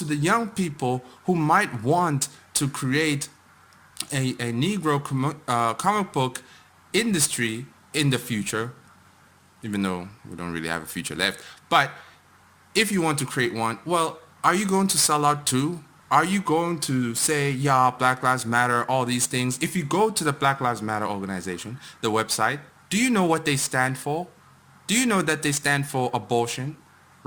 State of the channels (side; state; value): both; identical; correlation 1.00